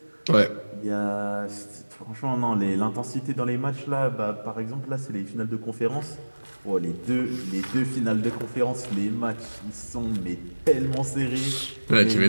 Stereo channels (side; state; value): both; inverted; correlation -1.00